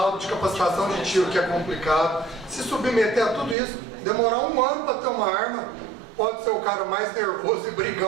de capacitação de tiro que é complicado, se submeter a tudo isso, demorar 1 ano para ter uma arma. Pode ser o cara mais nervoso e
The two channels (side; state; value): left; drops out; at 3.6 s